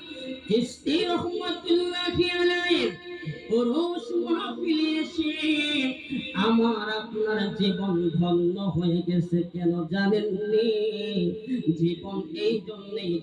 চিশতি রহমাতুল্লাহি আলাইহি ওরস মাহফিলে এসে আমার আপনার জীবন ধন্য হয়ে গেছে। কেন জানেননি? জীবন এই জন্যই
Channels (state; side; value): identical; both; correlation 1.00